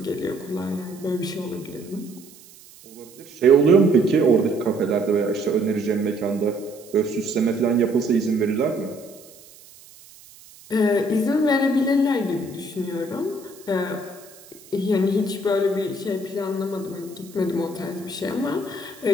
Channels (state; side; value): noise; right; hiss, 22 dB below the sound